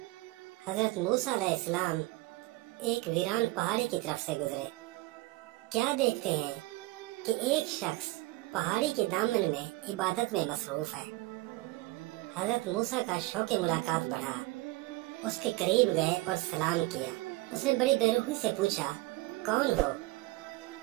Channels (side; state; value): left; quieter; 20.3 dB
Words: حضرت موسیٰ علیہ السلام ایک ویران پہاڑی کی طرف سے گزرے۔ کیا دیکھتے ہیں کہ ایک شخص پہاڑی کے دامن میں عبادت میں مصروف ہے۔ حضرت موسیٰ کا شوق ملاقات بڑھا، اس کے قریب گئے اور سلام کیا۔ اس نے بڑی بے رحمی سے پوچھا، کون ہو؟